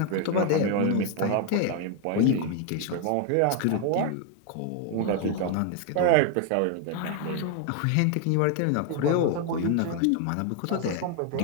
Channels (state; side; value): different; both; correlation 0.00